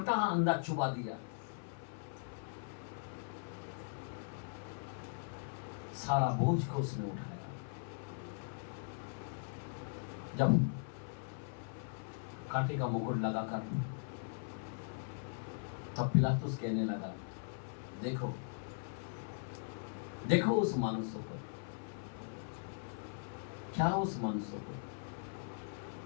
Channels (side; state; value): right; silent; 51 dB below the other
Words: अंदर चुबा दिया, सारा बोझ को उसने उठाया। जब कांटे का मुकुट लगाकर तब पिलातुस कहने लगा, देखो देखो उस मनुष्य को, क्या उस मनुष्य को,